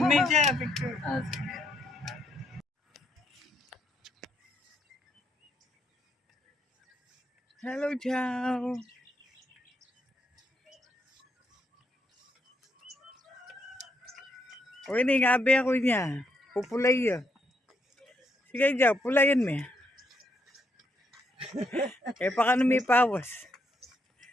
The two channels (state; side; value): normal; both; correlation 0.76